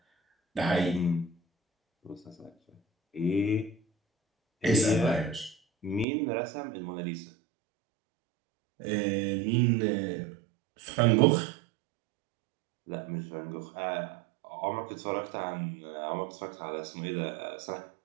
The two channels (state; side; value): drops out; left; at 6.1 s